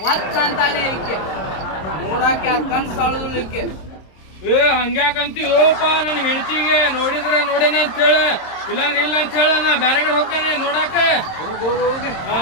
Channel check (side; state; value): right; late; 26 ms